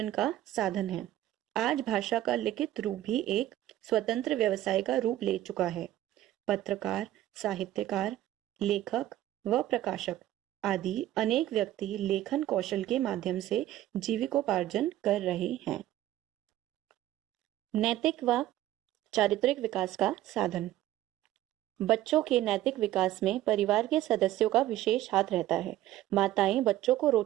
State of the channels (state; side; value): quieter; left; 14.1 dB